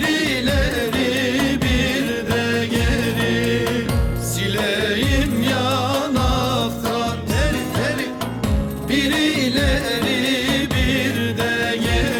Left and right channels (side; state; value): both; identical; correlation 1.00